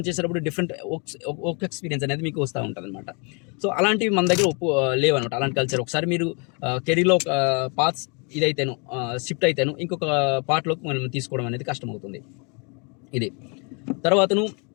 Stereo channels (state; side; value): quieter; right; 34.4 dB